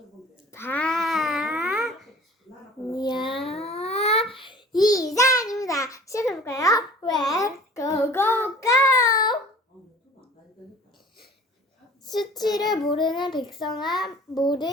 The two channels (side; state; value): both; normal; correlation 0.46